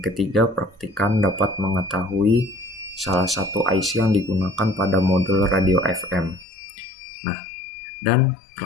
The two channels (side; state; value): right; drops out; at 6.5 s